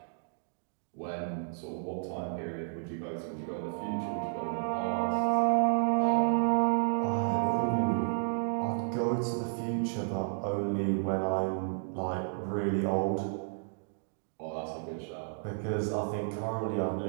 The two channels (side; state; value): left; silent; digital silence